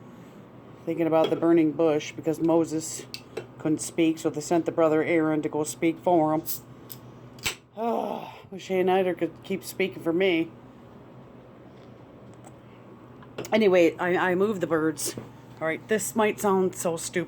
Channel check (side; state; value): both; identical; correlation 1.00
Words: thinking about the burning bush because Moses couldn't speak, so they sent the brother Aaron to go speak for him. Oh, wish Eider could keep speaking for me. Anyway, I moved the birds. All right, this might sound so